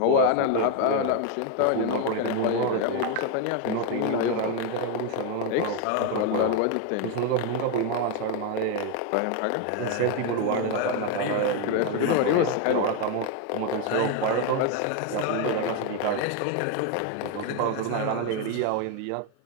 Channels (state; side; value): different; both; correlation 0.02